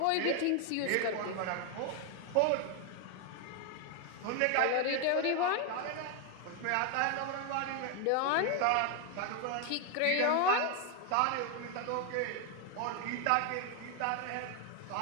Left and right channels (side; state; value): both; different; correlation 0.01